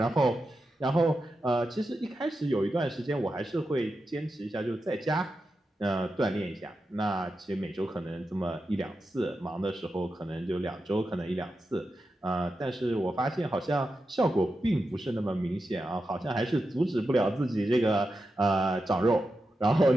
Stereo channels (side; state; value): both; normal; correlation 0.89